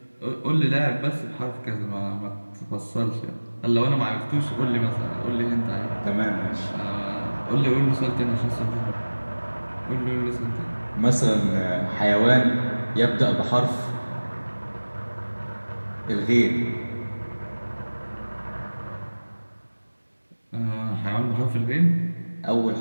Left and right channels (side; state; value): both; inverted; correlation -1.00